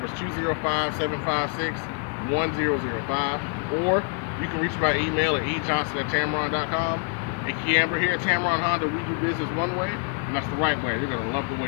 is 205-756-1005, or you can reach me by email at ejohnson@tameron.com. And KeAmber here at Tameron Honda, we do business one way, and that's the right way. You're going to love the way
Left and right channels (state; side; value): quieter; right; 32.1 dB